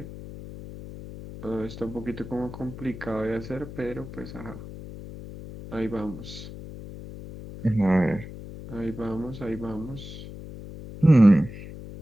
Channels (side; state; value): left; noise; hum, 12 dB below the sound